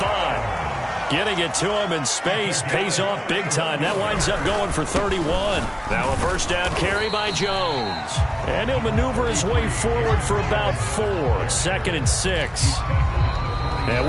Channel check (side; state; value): both; identical; correlation 1.00